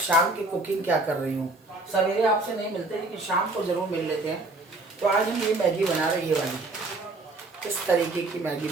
की कुकिंग क्या कर रही हूँ। सवेरे आपसे नहीं मिलते, लेकिन शाम को ज़रूर मिल लेते हैं। तो आज हम ये मैगी बना रहे हैं, ये वाली। इस तरीके की मैगी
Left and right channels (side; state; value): left; quieter; 3.0 dB